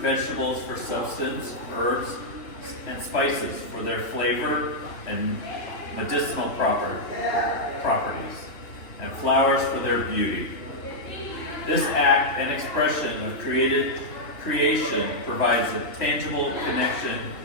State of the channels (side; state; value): right; late; 3.0 ms